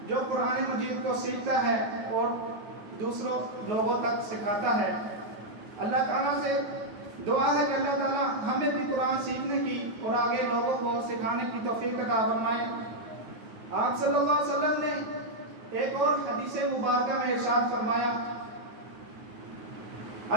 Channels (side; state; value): left; late; 9.4 ms